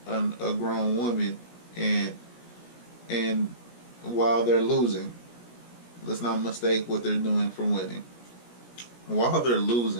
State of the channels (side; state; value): right; late; 17 ms